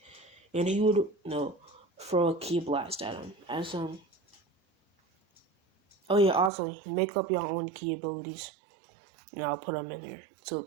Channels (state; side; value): drops out; left; at 6.5 s